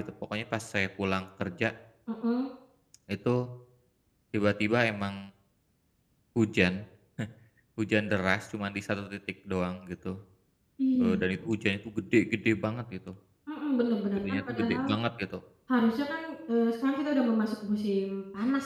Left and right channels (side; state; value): both; identical; correlation 1.00